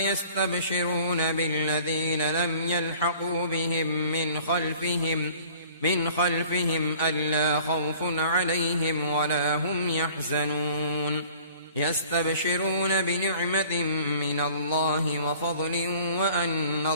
بالذين لم يلحقوا بهم من خلفهم ألا خوف عليهم ولا هم يحزنون. يستبشرون بنعمة من الله وفضل وأن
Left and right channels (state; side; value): inverted; both; correlation -0.50